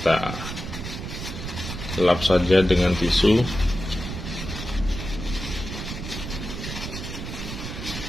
lap saja dengan tisu.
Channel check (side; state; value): right; noise; rumble, 7 dB below the sound